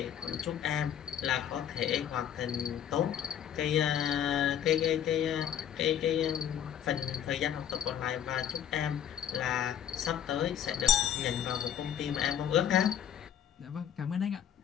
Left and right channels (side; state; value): right; quieter; 9.7 dB